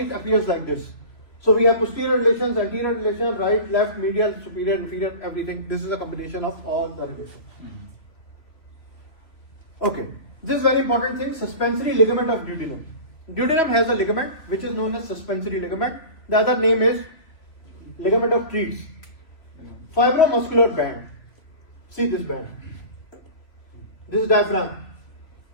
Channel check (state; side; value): late; right; 3.0 ms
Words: it appears like this. So we have posterior relations, anterior relations, right, left, medial, superior, inferior, everything. This is a combination of all the relations. Okay, this is very important thing, suspensory ligament of duodenum. Duodenum has a ligament which is known as suspensory ligament. The other name is ligament of Treats. Fibromuscular band. See this band. This is diaphragm.